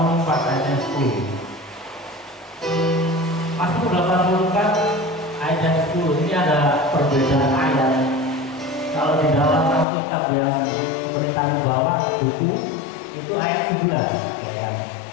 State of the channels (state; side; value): drops out; right; at 9.9 s